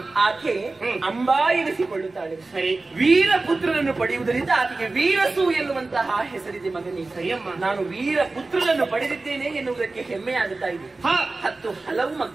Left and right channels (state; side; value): quieter; left; 3.4 dB